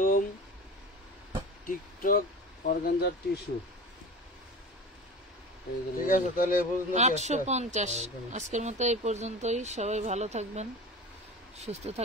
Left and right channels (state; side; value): normal; both; correlation 0.33